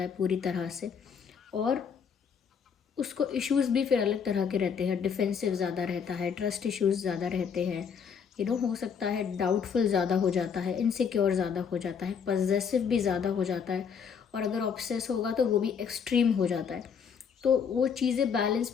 है पूरी तरह से। और उसको इश्यूज़ भी फिर अलग तरह के रहते हैं, डिफेंसिव ज़्यादा रहता है, ट्रस्ट इश्यूज़ ज़्यादा रहते हैं, हो सकता है डाउटफुल ज़्यादा हो जाता है, इनसिक्योर ज़्यादा हो जाता है, पजेसिव भी ज़्यादा हो जाता है, और अगर ऑब्सेस होगा तो वो भी एक्सट्रीम हो जाता है। तो वो चीज़ें बैलेंस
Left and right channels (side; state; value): right; quieter; 6.8 dB